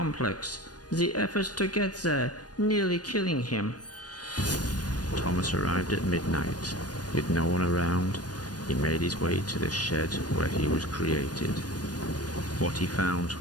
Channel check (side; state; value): right; late; 0.69 ms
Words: the effort to get there nearly killing him. Thomas arrived at midnight. With no one around, he made his way to the shed where he was created. What he found